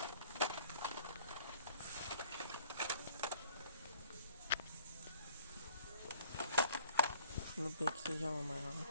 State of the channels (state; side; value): inverted; both; correlation -0.57